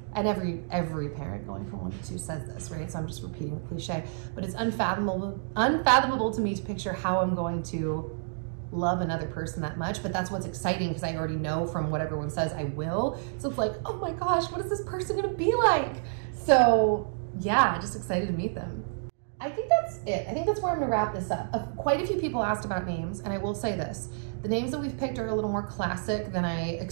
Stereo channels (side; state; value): left; silent; digital silence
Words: and every parent going from 1 to 2 says this, right? So I'm just repeating the cliche, but it's unfathomable to me to picture how I'm going to love another person that much. But that's what's exciting because I already know from what everyone says I will. So it's like, oh my gosh, what is this person gonna be like? So yeah, just excited to meet them. I think that's it. I think that's where I'm gonna wrap this up. Quite a few people asked about names, and I will say this. The names that we've picked are a little more classic than I